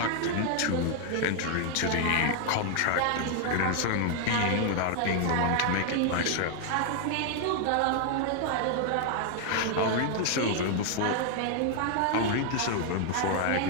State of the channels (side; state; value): both; different; correlation 0.00